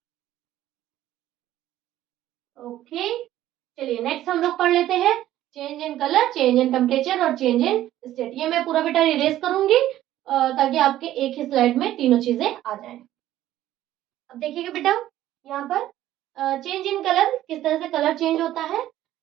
Okay, चलिए नेक्स्ट हम लोग पढ़ लेते हैं change in colour, change in temperature और चेंज इन स्टेट। ये मैं पूरा बेटा इरेज करूंगी ताकि आपके एक ही स्लाइड में तीनों चीजें आ जाएं। अब देखिएगा बेटा, यहाँ पर चेंज इन कलर, किस तरह से कलर चेंज होता है।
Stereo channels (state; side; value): quieter; left; 13.5 dB